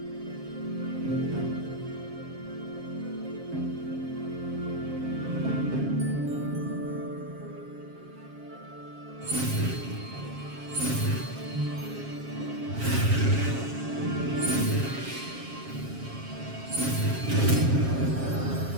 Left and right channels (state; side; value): late; left; 7.4 ms